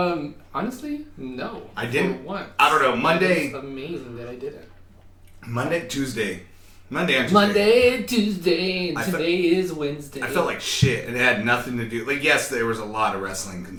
Honestly, no. I didn't. For once. I don't know. Monday, It's amazing that I didn't. Monday, Tuesday. Monday and Tuesday. Monday, Tuesday, and I today is Wednesday. I felt like shit, and it had nothing to do. Like, yes, there was a lot of wrestling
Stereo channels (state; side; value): identical; both; correlation 1.00